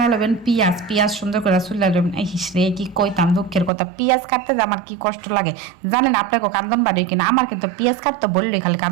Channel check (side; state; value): left; drops out; at 3.7 s